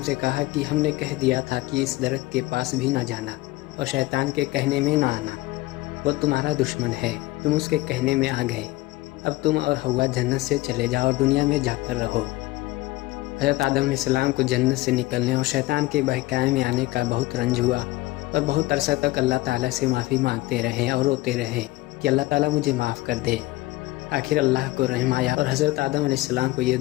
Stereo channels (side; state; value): right; quieter; 19.0 dB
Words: کہا کہ ہم نے کہہ دیا تھا کہ اس درخت کے پاس بھی نہ جانا اور شیطان کے کہنے میں نہ آنا، وہ تمہارا دشمن ہے، تم اس کے کہنے میں آ گئے۔ اب تم اور حوا جنت سے چلے جاؤ اور دنیا میں جا کر رہو۔ حضرت آدم علیہ السلام کو جنت سے نکلنے اور شیطان کے بہکانے میں آنے کا بہت رنج ہوا، اور بہت عرصہ تک اللہ تعالیٰ سے معافی مانگتے رہے اور روتے رہے کہ اللہ تعالیٰ مجھے معاف کر دے۔ آخر اللہ کو رحم آیا اور حضرت آدم علیہ السلام کو یہ